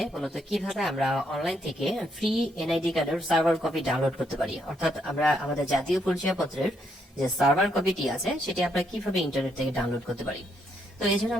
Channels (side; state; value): both; normal; correlation 0.75